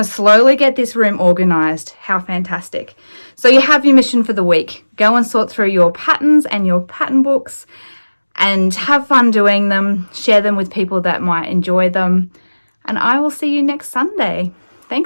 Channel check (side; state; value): both; inverted; correlation -1.00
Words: slowly get this room organized. How fantastic. So you have your mission for the week. Go and sort through your patterns and your pattern books and have fun doing them. Share them with people that might enjoy them. And I will see you next Sunday.